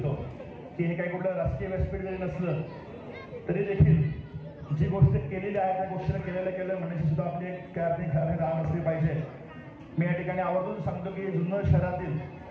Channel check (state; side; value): identical; both; correlation 1.00